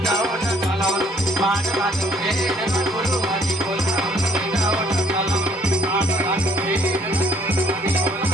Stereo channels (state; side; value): normal; both; correlation 0.63